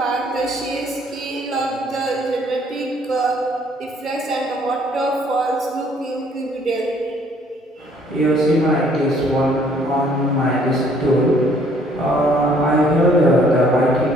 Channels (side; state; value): both; normal; correlation 0.62